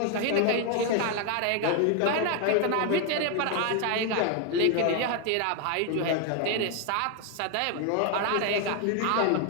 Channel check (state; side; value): different; both; correlation 0.01